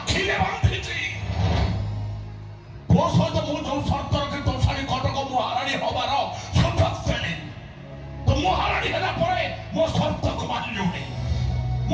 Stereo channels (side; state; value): both; identical; correlation 1.00